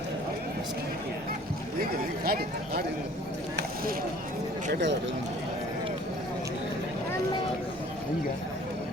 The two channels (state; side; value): normal; both; correlation 0.52